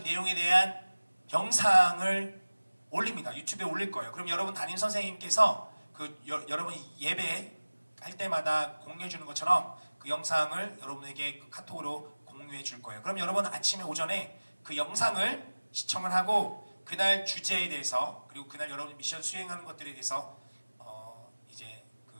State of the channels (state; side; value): inverted; both; correlation -1.00